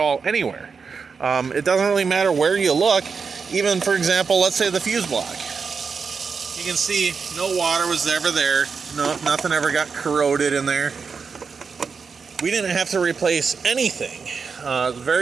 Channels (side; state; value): left; quieter; 5.4 dB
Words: anywhere. It doesn't really matter where you look. Even, for example, let's say the fuse block. You can see no water was ever there. No, nothing ever got corroded in there. We didn't have to replace anything.